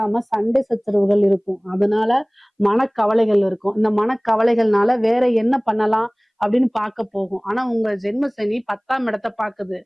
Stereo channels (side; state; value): both; identical; correlation 1.00